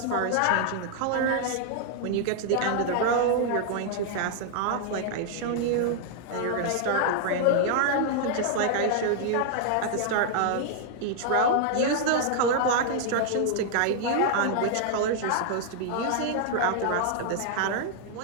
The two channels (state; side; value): different; both; correlation -0.01